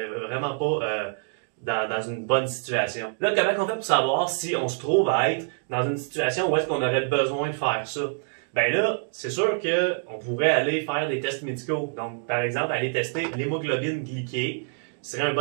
pas dans une bonne situation. Là, comment on fait pour savoir si on se trouve à être dans une situation où est-ce qu'on aurait besoin de faire ça? Ben là, c'est sûr qu'on pourrait aller faire des tests médicaux. Donc, par exemple, aller tester l'hémoglobine glyquée serait un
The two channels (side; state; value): left; silent; digital silence